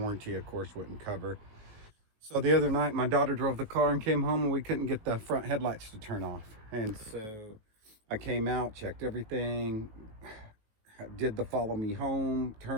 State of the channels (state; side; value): late; left; 19 ms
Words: of course, wouldn't cover. So the other night, my daughter drove the car and came home and we couldn't get the front headlights to turn off. And so I came out, checked everything, did the follow me home,